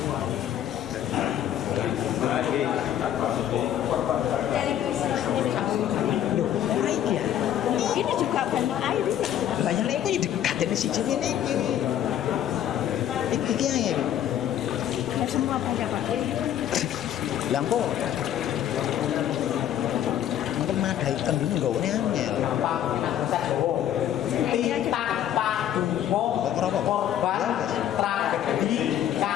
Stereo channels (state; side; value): quieter; right; 10.9 dB